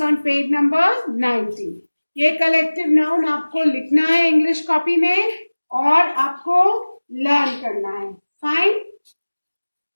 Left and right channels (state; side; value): inverted; both; correlation -1.00